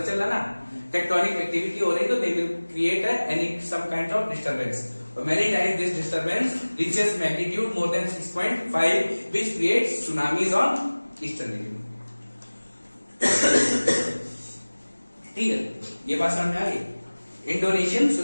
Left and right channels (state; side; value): inverted; both; correlation -1.00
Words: चला ना, टेक्टोनिक एक्टिविटी हो रही तो they will create any some kind of disturbance. Many times this disturbance reaches magnitude more than 6.5 which creates tsunamis on eastern region. ठीक है, ये बात समझ में आ गई? Indonesian